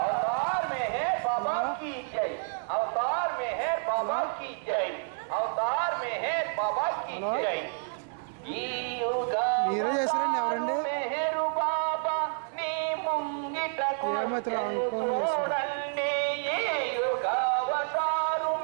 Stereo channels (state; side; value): silent; left; 58 dB below the other